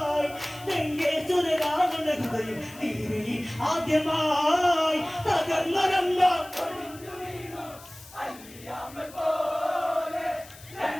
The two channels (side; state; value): left; noise; hiss, 20 dB below the sound